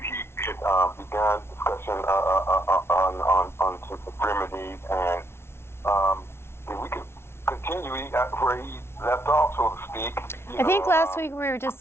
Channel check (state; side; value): late; right; 0.12 ms